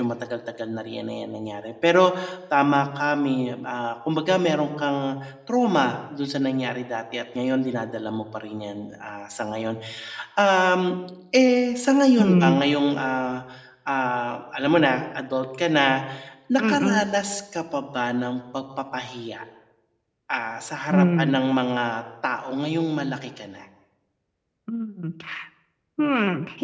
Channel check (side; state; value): both; identical; correlation 1.00